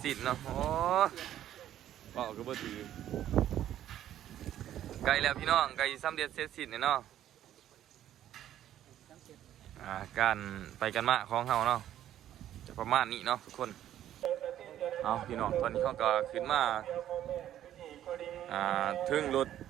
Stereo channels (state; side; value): quieter; left; 11.7 dB